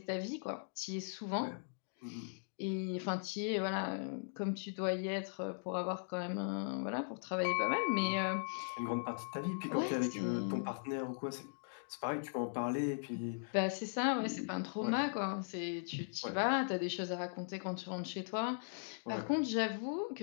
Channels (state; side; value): silent; right; digital silence